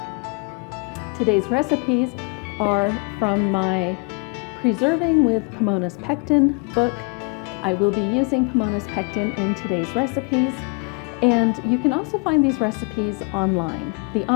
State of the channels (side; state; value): right; quieter; 33.6 dB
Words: Today's recipes are from my Preserving with Pomona's Pectin book. I will be using Pomona's Pectin in today's recipes. And you can also find these recipes online. The